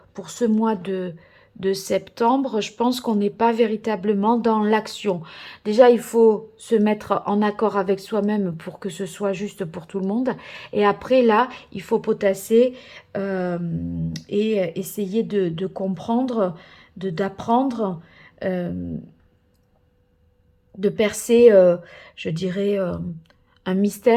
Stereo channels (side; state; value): both; identical; correlation 1.00